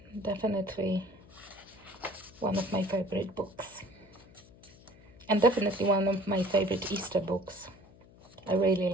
definitely one of my favorite books. And definitely one of my favorite Easter books. I really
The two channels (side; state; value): left; noise; hum, 24 dB below the sound